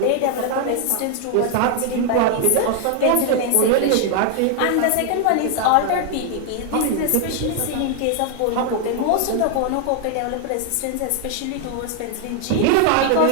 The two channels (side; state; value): both; different; correlation 0.00